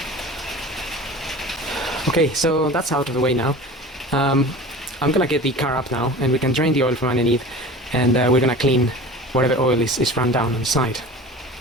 Okay, so that's out of the way now. I'm gonna get the car up now, and we can drain the oil from underneath, and we're gonna clean whatever oil is run down on the side.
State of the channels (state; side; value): normal; both; correlation 0.37